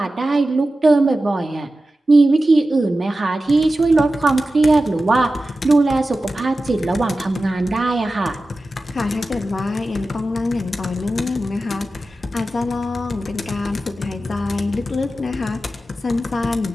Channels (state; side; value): normal; both; correlation 0.94